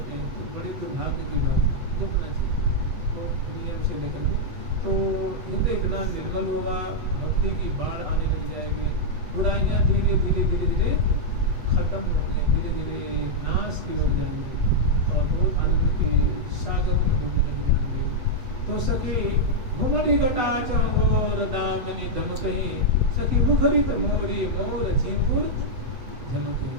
तो बड़ी दुर्भाग्य की बात है। जपना चाहिए तो नियम से लेकर के, तो हृदय इतना निर्मल होगा, भक्ति की बाढ़ आने लग जाएगी, बुराइयाँ धीरे धीरे धीरे धीरे खत्म होंगी, धीरे धीरे नाश की ओर जाएंगे और बहुत आनंद के सागर में डूबने लग जाएंगे। तो सखी घुमड़ी घटा चौर दामिनी दमकही, सखी मुखरित मोरी मोर झिंगुर झमके।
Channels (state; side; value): late; left; 8.2 ms